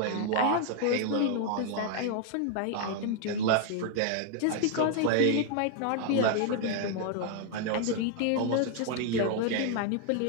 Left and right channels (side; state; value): both; different; correlation 0.00